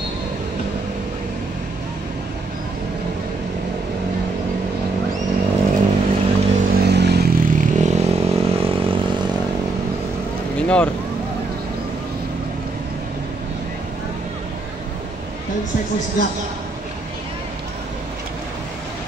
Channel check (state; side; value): quieter; left; 3.5 dB